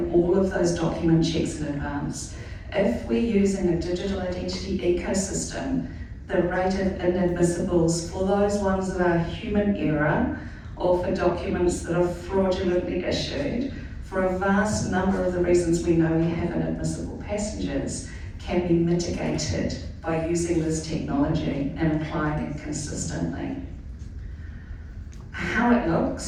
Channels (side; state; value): both; identical; correlation 1.00